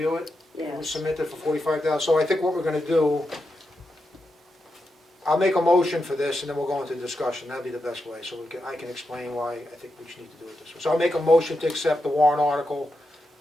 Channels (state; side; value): normal; both; correlation 0.87